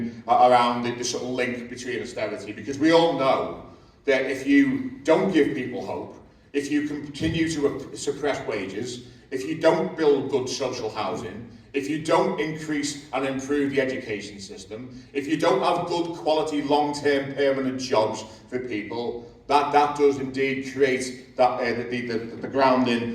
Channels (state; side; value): identical; both; correlation 1.00